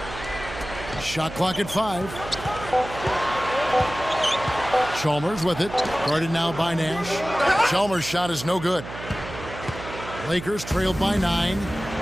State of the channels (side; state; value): right; noise; hum, 12 dB below the sound